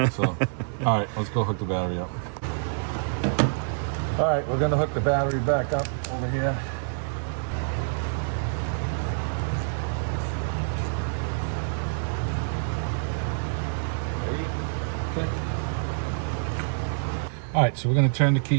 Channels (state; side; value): silent; left; 60 dB below the other